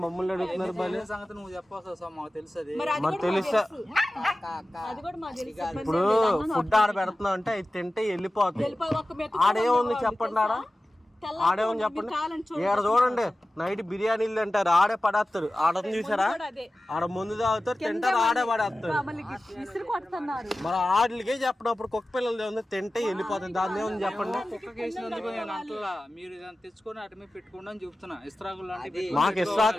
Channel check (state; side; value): normal; both; correlation 0.95